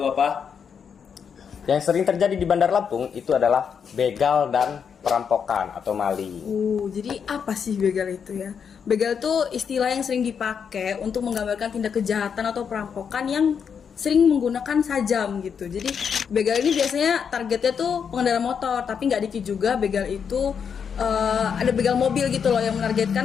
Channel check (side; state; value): right; quieter; 7.0 dB